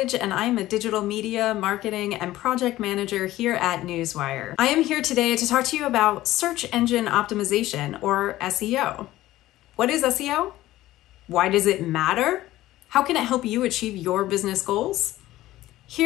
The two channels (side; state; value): right; quieter; 15.7 dB